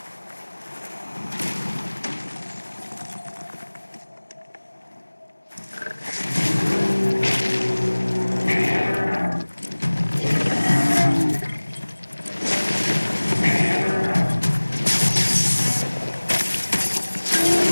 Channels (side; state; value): both; inverted; correlation -1.00